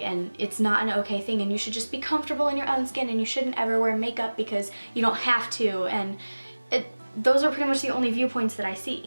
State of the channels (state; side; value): inverted; both; correlation -1.00